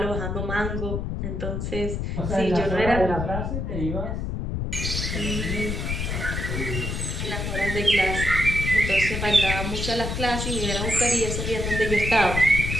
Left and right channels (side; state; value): left; noise; rumble, 3 dB below the sound